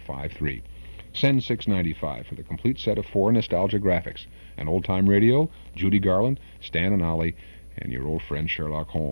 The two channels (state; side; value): inverted; both; correlation -1.00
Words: Send $6.95 for the complete set of 4 nostalgia graphics. An old-time radio, Judy Garland, Stan and Ollie, and your old friend Sherlock